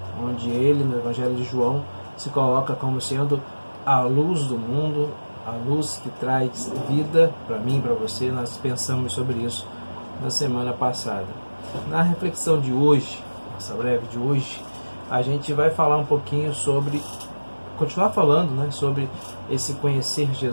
onde ele, no Evangelho de João, se coloca como sendo a luz do mundo, a luz que traz vida para mim e para você. Nós pensamos sobre isso na semana passada. Na reflexão de hoje, nossa breve de hoje, a gente vai falar um pouquinho sobre, continuar falando, sobre esse conhecer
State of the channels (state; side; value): inverted; both; correlation -1.00